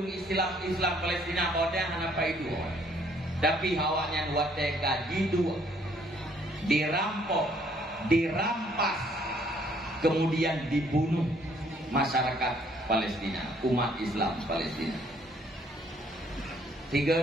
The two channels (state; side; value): normal; both; correlation 0.64